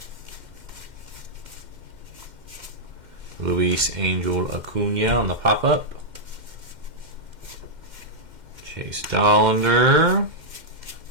Luis Angel Acuna on the pop-up. Chase Dollander.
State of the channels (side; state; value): left; late; 2.1 ms